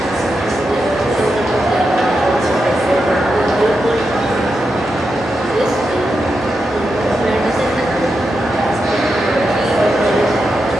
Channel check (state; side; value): normal; both; correlation 0.87